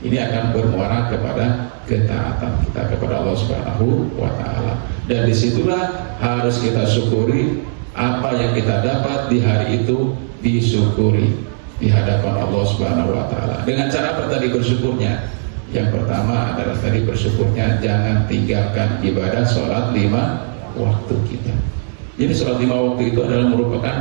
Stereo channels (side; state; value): left; silent; 68 dB below the other